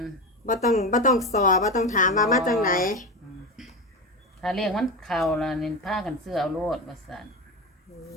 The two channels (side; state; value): both; normal; correlation 0.20